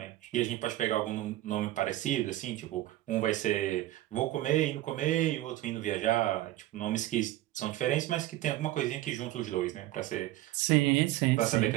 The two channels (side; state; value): left; quieter; 15.7 dB